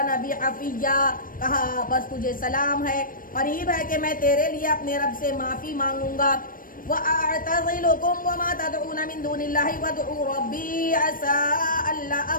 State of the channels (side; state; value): right; late; 0.40 ms